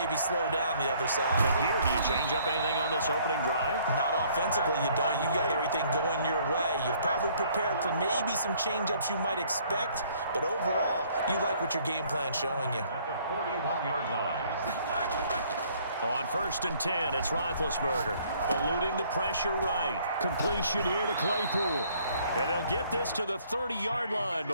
slow down the other side. And here, do you change up anything on this opening drive? Not offensively, you don't. You got everything going your way. You've probably prepared for maybe some change-ups you might expect, but overall, you like what your game plan's showing you. At the 41-yard line. On 1st and 10, it's Roethlisberger. Eluding the pressure right. Completion here to Claypool. And they'll get this to the 30-yard line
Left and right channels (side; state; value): both; inverted; correlation -0.61